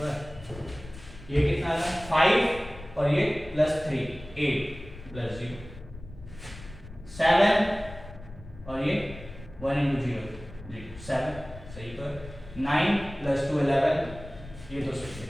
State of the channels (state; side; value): noise; left; rumble, 16 dB below the sound